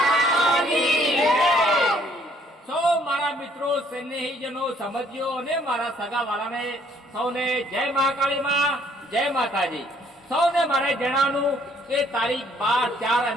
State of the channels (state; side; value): normal; both; correlation 0.64